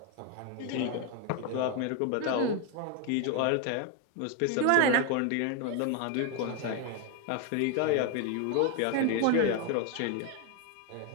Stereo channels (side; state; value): both; different; correlation 0.01